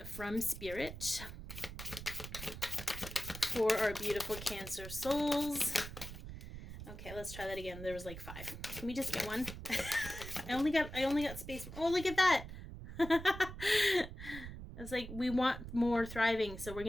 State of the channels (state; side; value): noise; right; rumble, 10 dB below the sound